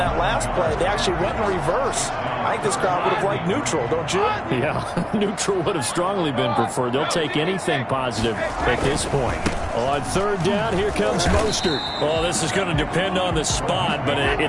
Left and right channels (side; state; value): both; identical; correlation 1.00